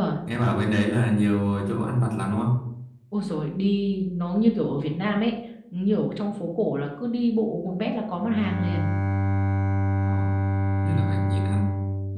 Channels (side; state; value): both; identical; correlation 1.00